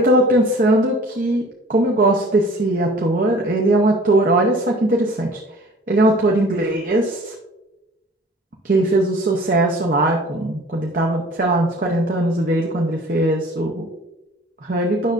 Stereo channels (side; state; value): both; normal; correlation 0.48